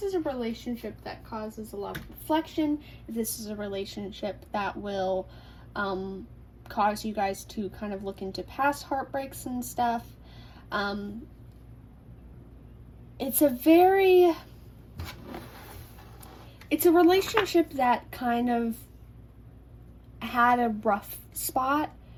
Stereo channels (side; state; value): both; identical; correlation 1.00